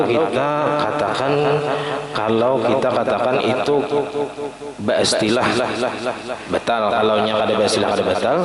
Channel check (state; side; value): identical; both; correlation 1.00